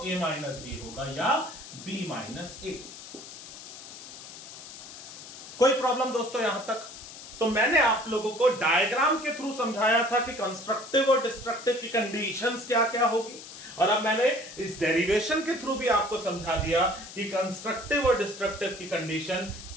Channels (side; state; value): left; noise; hiss, 14 dB below the sound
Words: a माइनस b होगा या b माइनस a. कोई प्रॉब्लम दोस्तों यहां तक? तो मैंने आप लोगों को डायग्राम के थ्रू समझाया था कि कंस्ट्रक्टिव और डिस्ट्रक्टिव की कंडीशंस क्या क्या होगी, और अब मैंने इस डेरिवेशन के थ्रू भी आपको समझा दिया कि कंस्ट्रक्टिव और डिस्ट्रक्टिव की कंडीशन